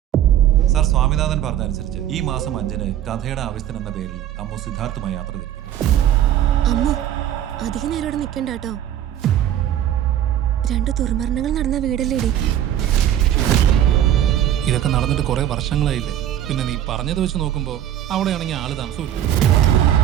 സർ സ്വാമിനാഥൻ പറഞ്ഞതനുസരിച്ച് ഈ മാസം 5-ന് കഥയുടെ ആവശ്യത്തിന് എന്ന പേരിൽ അമ്മു സിദ്ധാർത്ഥുമായി യാത്ര തിരിക്കുന്നു. അമ്മു അധികം നേരം ഇവിടെ നിൽക്കണ്ട കേട്ടോ. 2 ദുർമരണങ്ങൾ നടന്ന വീടല്ലേടി. ഇതൊക്കെ നടന്നിട്ട് കുറെ വർഷങ്ങളായില്ലേ. പിന്നെ നീ പറഞ്ഞത് വെച്ച് നോക്കുമ്പോ അവിടെയാണെങ്കിൽ ആള് താമസമില്ല.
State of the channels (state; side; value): quieter; left; 11.2 dB